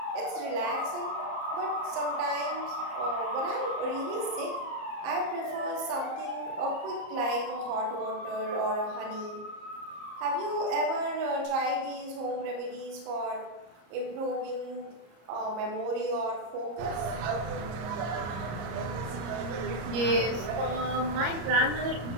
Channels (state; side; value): late; left; 34 ms